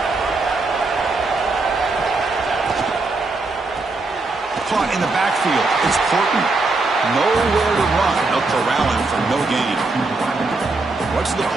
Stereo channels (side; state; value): left; quieter; 3.5 dB